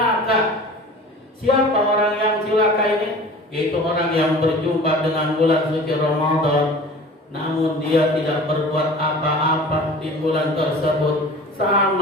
Siapa orang yang cilaka ini? Yaitu orang yang berjumpa dengan bulan suci Ramadan, namun dia tidak berbuat apa-apa di bulan tersebut,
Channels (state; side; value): normal; both; correlation 0.41